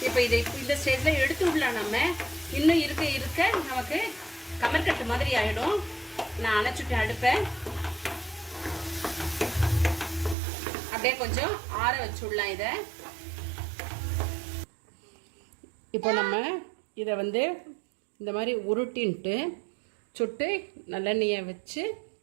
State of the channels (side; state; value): left; drops out; at 10.4 s